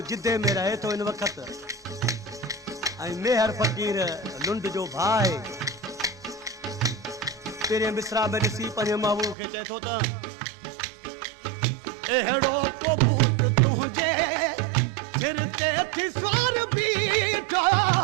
जिद्दे में रहे तो इन वक्त मेहर फकीर लुंड जो भाई तेरे मिसरा में ॾिसी पंहिंजे महबूब खे चए थो त अहिड़ो को भूत तुंहिंजे सिर ते थी सवार बीठो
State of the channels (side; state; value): left; drops out; at 9.3 s